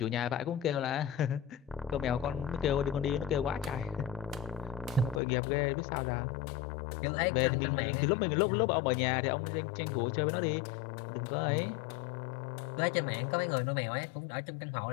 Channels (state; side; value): drops out; right; at 5.2 s